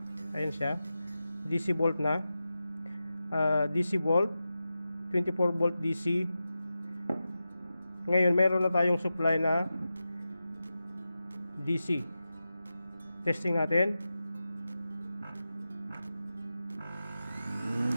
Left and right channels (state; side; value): inverted; both; correlation -0.92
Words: Ayan siya. DC volt na. DC volt. 24 volt DC. Ngayon mayroon na tayong supply na DC. Testing natin.